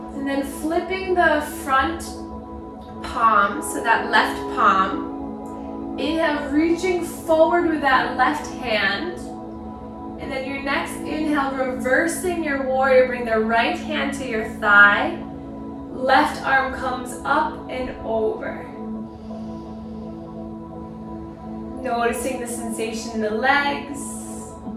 And then flipping the front palm, so that left palm. Inhale, reaching forward with that left hand. And then your next inhale, reversing your warrior, bring the right hand to your thigh. Left arm comes up and over. Noticing the sensation in the legs.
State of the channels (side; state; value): both; identical; correlation 1.00